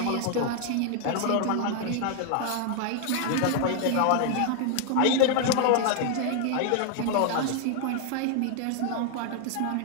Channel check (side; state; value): both; different; correlation 0.00